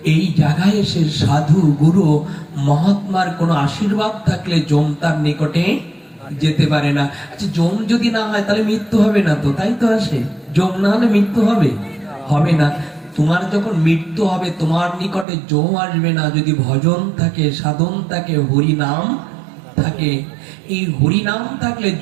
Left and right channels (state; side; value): drops out; left; at 15.2 s